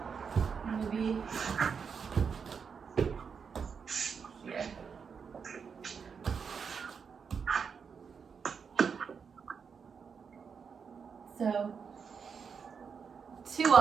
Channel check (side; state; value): left; quieter; 6.2 dB